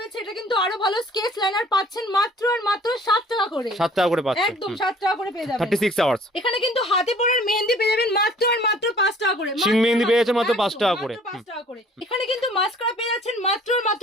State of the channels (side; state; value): both; normal; correlation 0.54